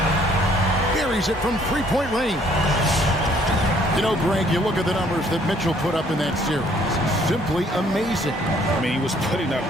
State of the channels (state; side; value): normal; both; correlation 0.62